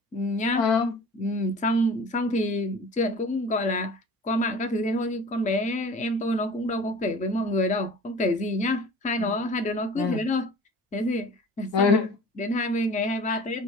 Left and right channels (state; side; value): normal; both; correlation 0.43